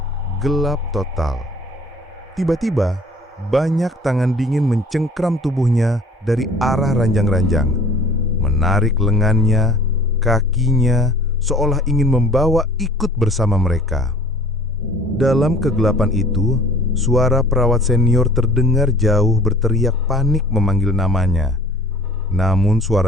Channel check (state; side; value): normal; both; correlation 0.51